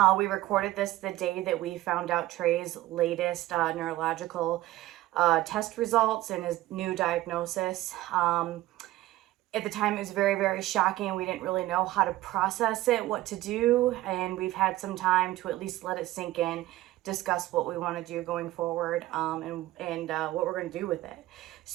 We recorded this the day that we found out Trey's latest neurological test results and his new diagnosis. At the time, it was very, very shocking. We didn't really know how to process it, what to do, and we've had some time to at least let it sink in, discuss what we want to do going forward, and what we're going to do with it.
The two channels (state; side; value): quieter; left; 16.4 dB